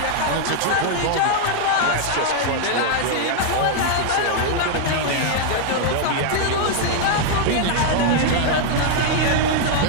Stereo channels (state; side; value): different; both; correlation 0.00